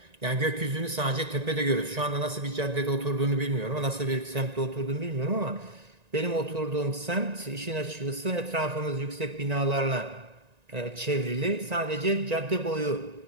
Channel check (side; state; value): left; late; 1.9 ms